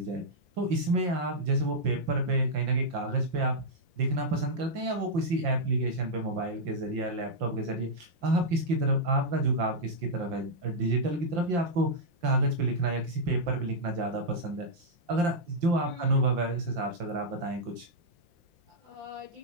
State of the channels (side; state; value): left; late; 5.7 ms